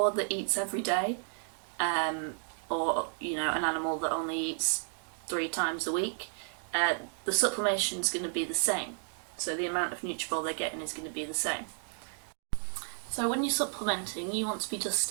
that eats every day, or an animal that only eats 3 times a week, the supplementation is going to be the same. So the amount of Nutritional they're getting is going to be the same. So when you're supplementing, you want to be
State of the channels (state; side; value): silent; left; 56 dB below the other